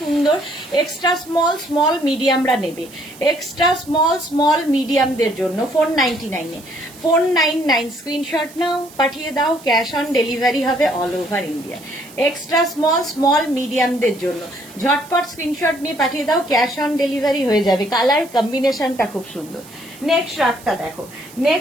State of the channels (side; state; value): right; noise; hiss, 21 dB below the sound